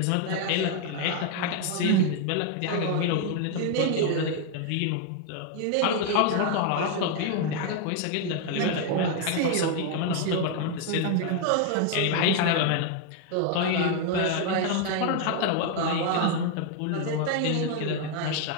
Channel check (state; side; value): different; both; correlation 0.01